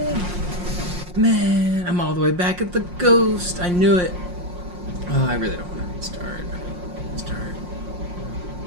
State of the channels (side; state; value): left; late; 5.6 ms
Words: Man, I'm all the way back at the ghost. I knew it. Oh, I really don't want to restart.